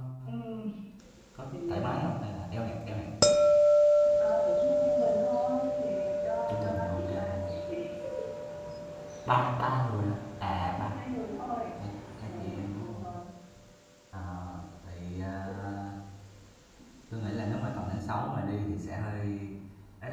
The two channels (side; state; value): both; identical; correlation 1.00